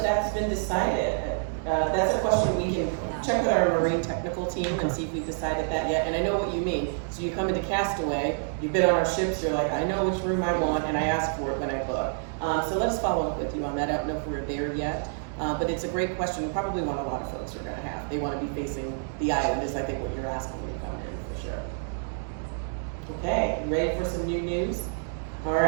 been decided. That's a question we can check with our marine technical team and see if we've decided that yet. And I know what you mean. So you come into Castaway, you've been on our ships, you're like, I know which room I want, and I ask for it when I book. So let's follow up with you on that. I don't know if we're there yet. But it's a great question. Probably one a lot of folks are going to have. They want to be facing the island is I think what you're asking when you come in for sure. Okay, you ready for some new news? All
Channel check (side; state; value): left; silent; digital silence